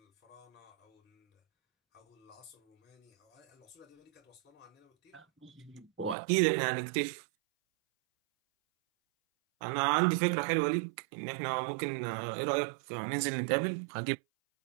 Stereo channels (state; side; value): drops out; left; at 6.2 s